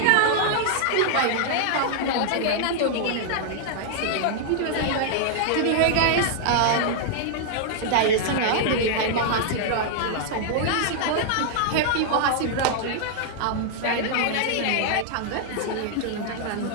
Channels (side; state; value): both; different; correlation -0.01